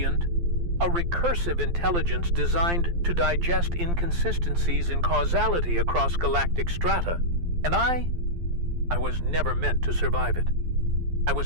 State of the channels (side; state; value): left; late; 12 ms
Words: a recursive intelligence designed to digest inconsistencies in causality across galactic strata. And I was never meant to survive it. I